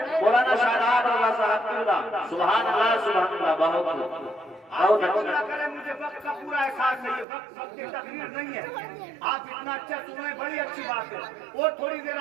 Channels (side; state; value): left; drops out; at 7.2 s